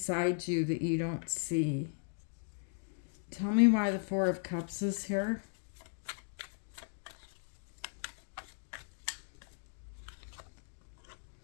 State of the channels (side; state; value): right; silent; digital silence